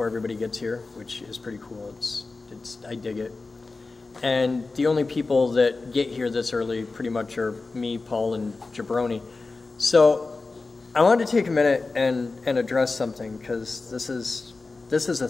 everybody gets here, which is pretty cool. I dig it. And the only people that get here this early pretty much are me, Paul, and Jabroni. So I wanted to take a minute and address something, because this is a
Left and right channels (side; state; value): right; quieter; 3.7 dB